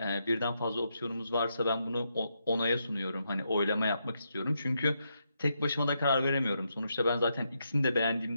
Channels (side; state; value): both; inverted; correlation -0.81